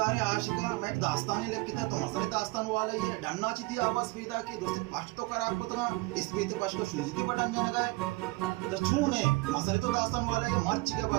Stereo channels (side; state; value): left; quieter; 22.7 dB